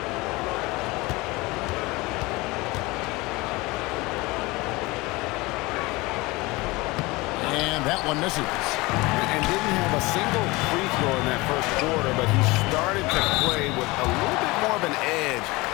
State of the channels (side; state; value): right; quieter; 22.6 dB